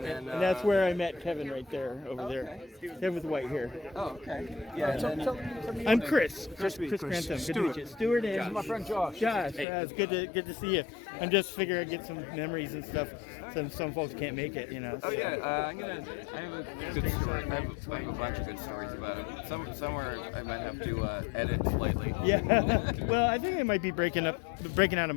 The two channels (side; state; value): right; drops out; at 9.7 s